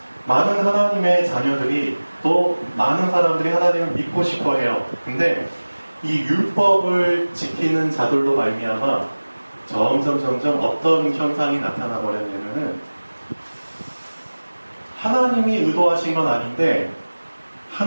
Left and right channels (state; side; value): inverted; both; correlation -1.00